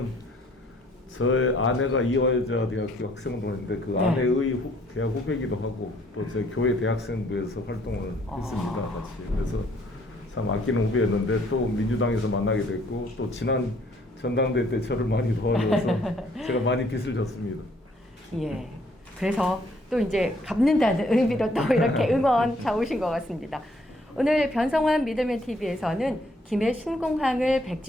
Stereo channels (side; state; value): both; normal; correlation 0.64